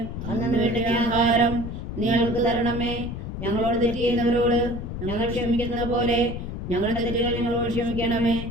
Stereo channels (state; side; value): noise; left; rumble, 7 dB below the sound